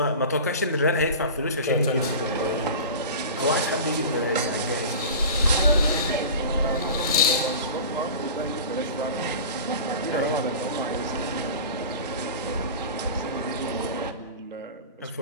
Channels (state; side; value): inverted; both; correlation -0.34